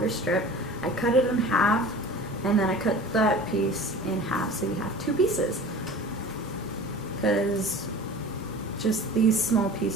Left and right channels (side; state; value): both; normal; correlation 0.40